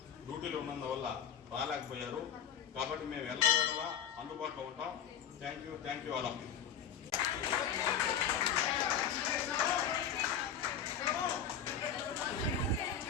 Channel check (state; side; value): quieter; right; 8.1 dB